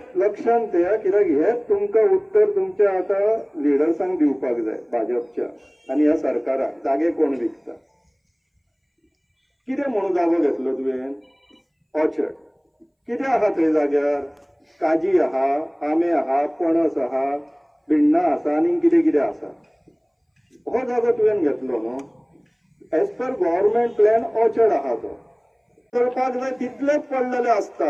लक्षांत ठेया, कित्याक हेच तुमकां उत्तर तुमच्या आता लिडर्सांक दिवपाक जाय भाजपच्या आनी ह्या सरकाराक. जागे कोण विकता, कितें म्हणून जागो घेतलो तुवें? ऑर्चर्ड. कितें आहा थंय जाग्यार? काजी आहा, आंबे आहा, पणस आहा, भिण्णां आसा आनी कितें कितें आसा. हो जागो तुवें घेतलो न्हू. As per government plan orchard आहा तो करपाक जाय तितलेच पडलेले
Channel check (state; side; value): identical; both; correlation 1.00